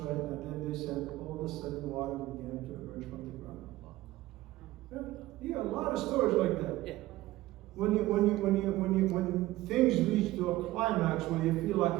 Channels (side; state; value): left; quieter; 17.1 dB